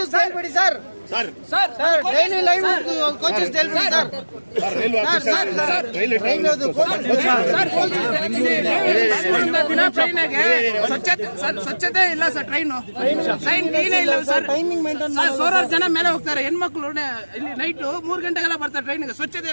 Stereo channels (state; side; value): inverted; both; correlation -1.00